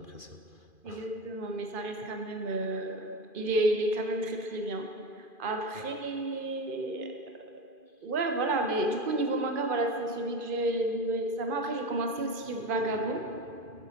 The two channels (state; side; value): late; left; 2.5 ms